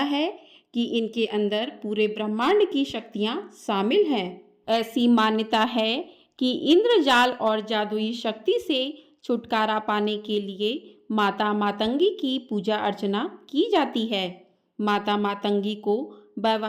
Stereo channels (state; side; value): identical; both; correlation 1.00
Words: है कि इनके अंदर पूरे ब्रह्मांड की शक्तियां शामिल हैं। ऐसी मान्यता है कि इंद्रजाल और जादुई शक्ति से छुटकारा पाने के लिए माता मातंगी की पूजा अर्चना की जाती है। माता मातंगी को